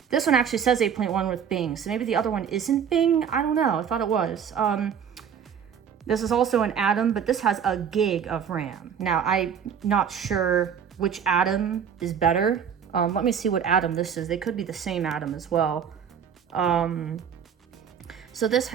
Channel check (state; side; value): quieter; left; 7.7 dB